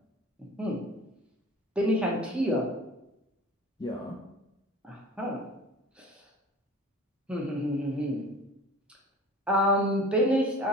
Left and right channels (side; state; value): both; normal; correlation 0.41